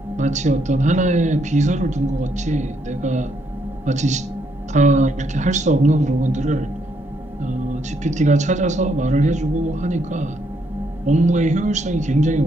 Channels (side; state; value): both; normal; correlation 0.74